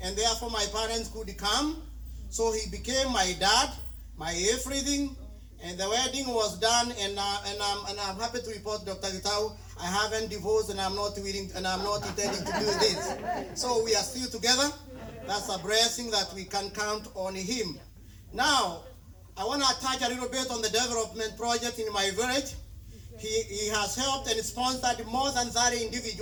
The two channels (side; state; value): both; identical; correlation 1.00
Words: and therefore my parents could come. So he became my dad, my everything, and the wedding was done, and I'm happy to report, Dr. Gitau, I haven't divorced, and I'm not willing, and I'm not intending to do this. So we are still together. That's a blessing that we can count on him. Now, I want to touch a little bit on the development project in my village. He has helped and sponsored more than 30